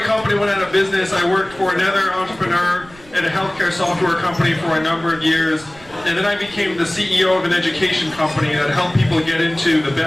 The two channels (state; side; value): noise; right; rumble, 23 dB below the sound